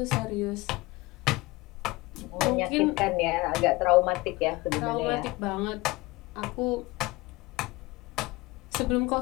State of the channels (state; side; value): quieter; right; 21.6 dB